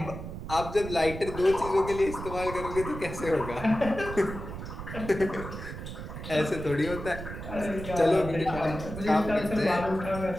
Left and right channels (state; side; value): noise; right; rumble, 9 dB below the sound